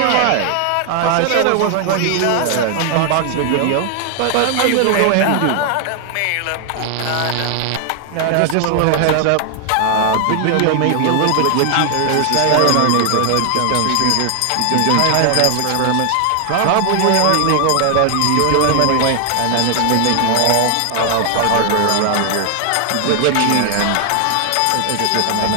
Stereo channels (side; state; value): both; different; correlation 0.00